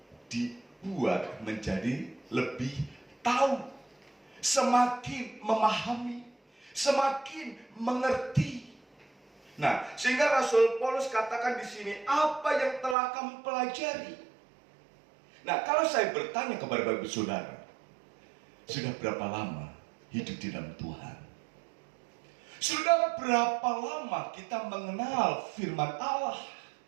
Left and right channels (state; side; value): drops out; left; at 13.0 s